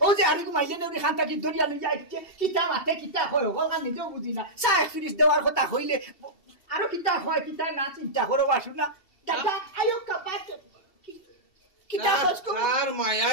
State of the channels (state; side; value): late; right; 2.7 ms